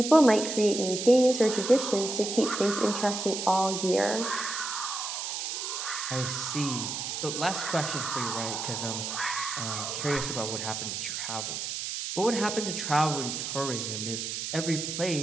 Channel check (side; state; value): right; noise; hiss, 4 dB below the sound